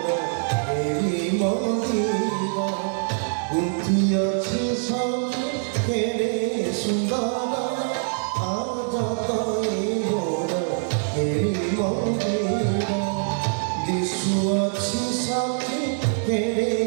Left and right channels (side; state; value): left; silent; digital silence